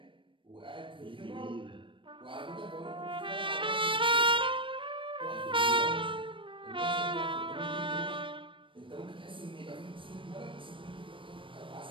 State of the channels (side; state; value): left; late; 0.25 ms